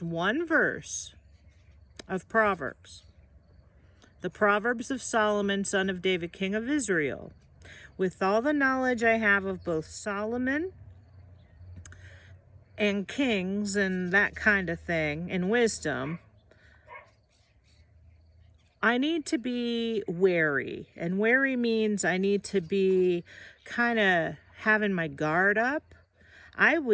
one verse of Proverbs, the Proverbs of Solomon, son of David, king of Israel, with all the knowledge I have of both Solomon and kings and that kind of thing, and wisdom, I need to be wary. And wary means I need to be kind of having my guard up. I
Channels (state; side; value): identical; both; correlation 1.00